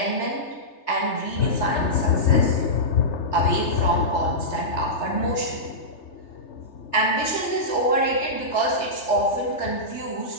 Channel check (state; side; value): late; right; 3.3 ms